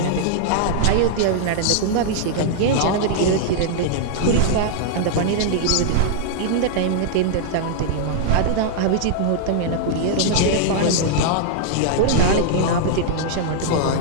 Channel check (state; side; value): different; both; correlation -0.01